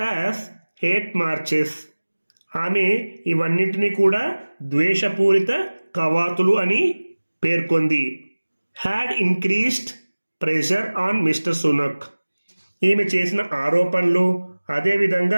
as hate marches. ఆమె ఇవన్నింటినీ కూడా ద్వేషపూరిత కవాతులు అని పేర్కొంది. Had increased pressure on mister Sunak. ఈమె చేసిన ఆరోపణలు,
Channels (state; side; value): inverted; both; correlation -1.00